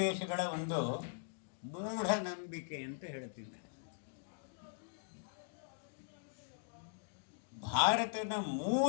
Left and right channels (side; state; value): right; silent; digital silence